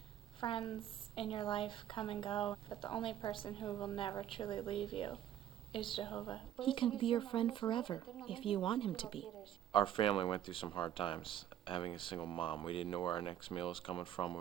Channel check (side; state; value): left; quieter; 11.1 dB